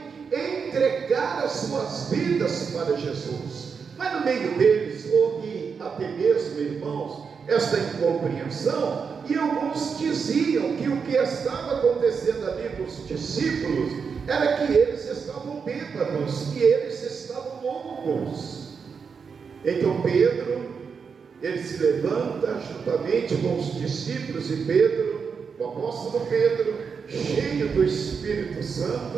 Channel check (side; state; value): left; quieter; 5.9 dB